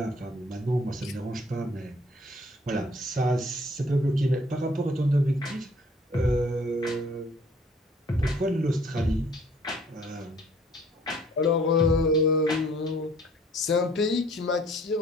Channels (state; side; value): normal; both; correlation 0.58